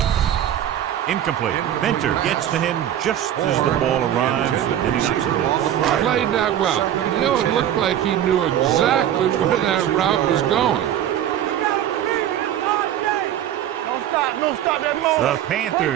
Incomplete. Venter gets to him just as the ball arrives, and he knocks it loose. Played that well. You know, it looked like he knew exactly where that route was going. Don't stop that moment. The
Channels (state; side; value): quieter; left; 11.0 dB